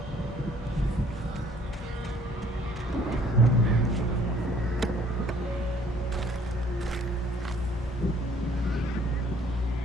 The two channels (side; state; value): both; normal; correlation 0.60